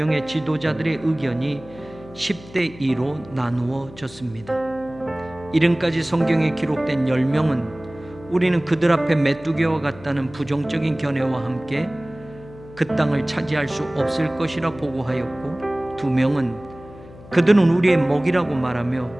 지도자들의 의견이 10대 2로 나누어졌습니다. 이름까지 성경에 기록된 10명은 우리는 그들 앞에 메뚜기와 같다는 부정적인 견해와 함께 그 땅을 차지할 수 없을 것이라 보고하였고 2명은 그들은 우리의 먹이라고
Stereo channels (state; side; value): noise; left; hum, 19 dB below the sound